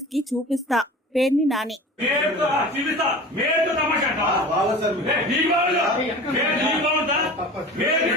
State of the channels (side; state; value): both; normal; correlation 0.37